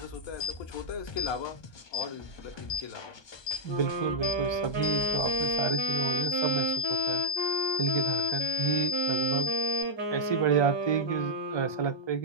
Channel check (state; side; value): late; right; 1.2 ms